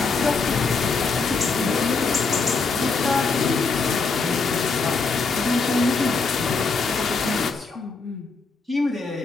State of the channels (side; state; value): right; quieter; 4.4 dB